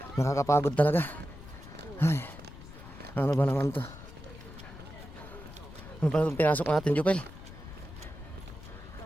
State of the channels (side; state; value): left; noise; rumble, 15 dB below the sound